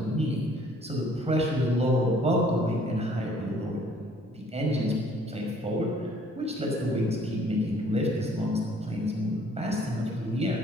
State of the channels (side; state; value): both; normal; correlation 0.59